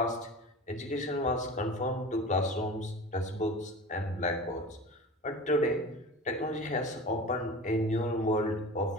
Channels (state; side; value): normal; both; correlation 0.35